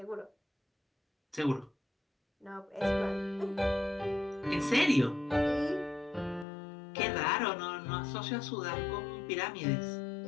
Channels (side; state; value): right; drops out; at 6.5 s